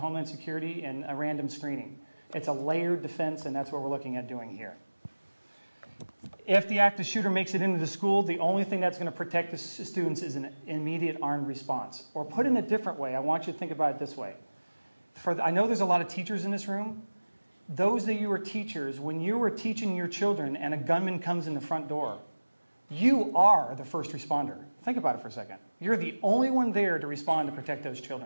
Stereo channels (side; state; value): both; inverted; correlation -1.00